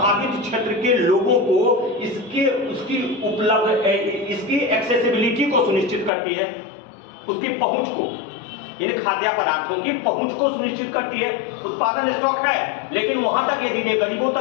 क्षेत्र के लोगों को उसकी एक्सेसिबिलिटी को सुनिश्चित करती है, उसकी पहुंच को, इन खाद्य पदार्थों की पहुंच को सुनिश्चित करती है। उत्पादन स्टॉक है, लेकिन वहां तक यदि नहीं गरीबों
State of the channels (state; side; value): drops out; right; at 6.1 s